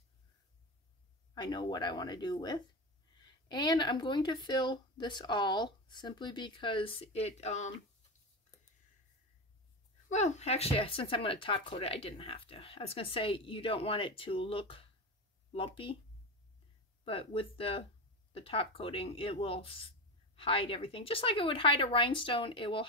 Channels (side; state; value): both; normal; correlation 0.21